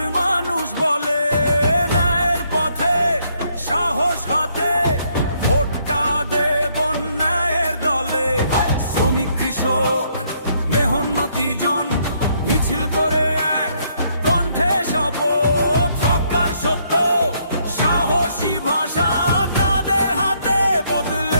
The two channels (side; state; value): both; inverted; correlation -0.70